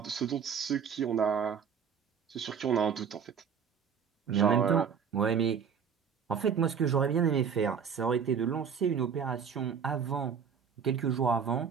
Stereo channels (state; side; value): quieter; left; 7.0 dB